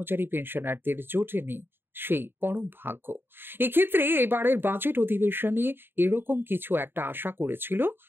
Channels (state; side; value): late; left; 0.10 ms